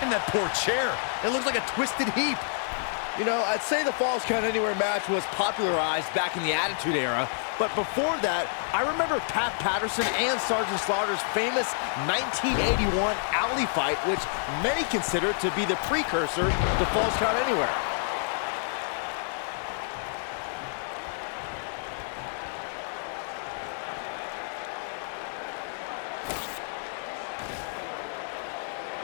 And that poor chair. It looks like a twisted heap. You know, I'd say the Falls Count Anywhere match was popularized back in the Attitude Era, but before that, I remember Pat Patterson and Sergeant Slaughter's famous 1981 alley fight, which many consider to be the precursor to Falls Count Anywhere.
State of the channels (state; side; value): silent; right; digital silence